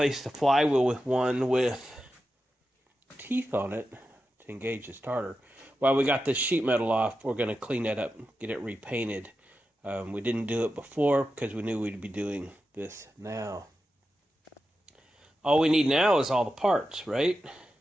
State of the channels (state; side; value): normal; both; correlation 0.91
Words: the flywheel with one with teeth on it to engage the starter. While we got this sheet metal off, we're going to clean that up, get it repainted. We didn't do it before because we knew we'd be doing this now. All we need now is all the parts, right?